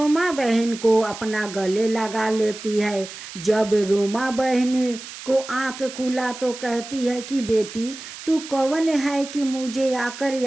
बहन को अपना गले लगा लेती है। जब रोमा बहन को आंख खुला तो कहती है कि बेटी तू कौन है कि मुझे आकर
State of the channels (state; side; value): noise; right; hiss, 13 dB below the sound